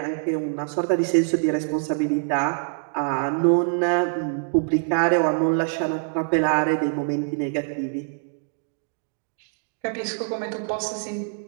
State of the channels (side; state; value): left; silent; digital silence